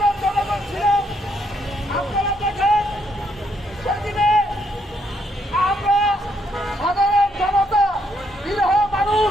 জনগণ ছিলাম। আপনারা দেখেন সেদিনে আমরা সাধারণ জনতা বিরহ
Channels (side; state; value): both; normal; correlation 0.73